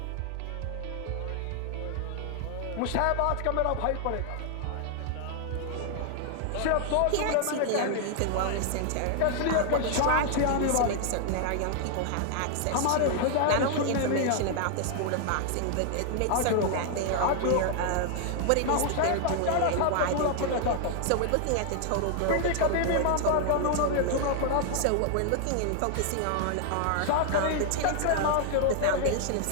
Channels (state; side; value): different; both; correlation 0.00